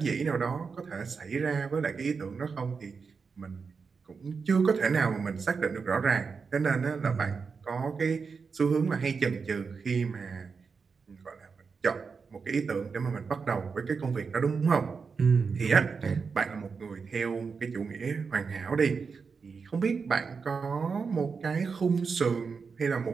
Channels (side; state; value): left; quieter; 5.3 dB